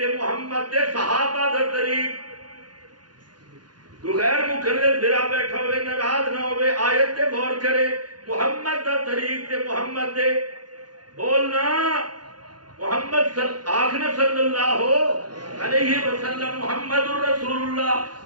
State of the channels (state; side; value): late; left; 0.70 ms